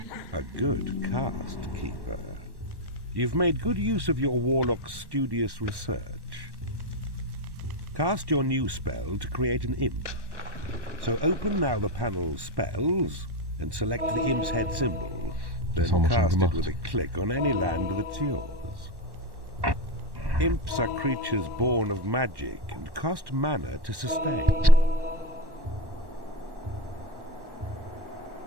A good cast, Keeper. You've made good use of your warlock's studious research. Cast your new spell to create an imp. So open now the panel Spells and select the imp's head symbol. Then cast it with a click on any land that's yours. Imps are creatures born of magic and cost mana to sustain.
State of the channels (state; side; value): late; left; 1.1 ms